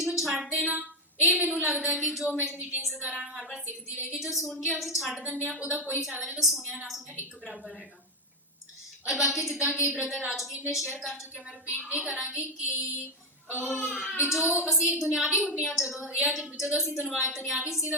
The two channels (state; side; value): normal; both; correlation 0.06